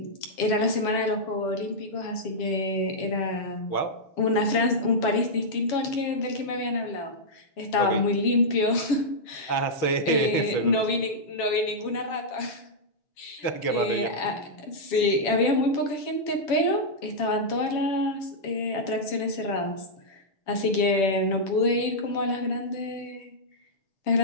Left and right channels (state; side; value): late; right; 7.2 ms